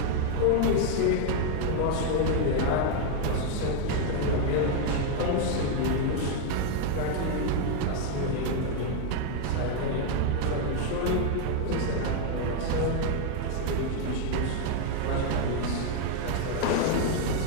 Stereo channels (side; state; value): both; different; correlation 0.00